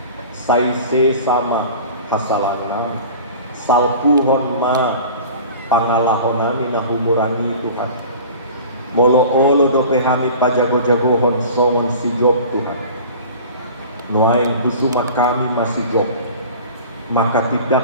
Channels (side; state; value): both; inverted; correlation -0.40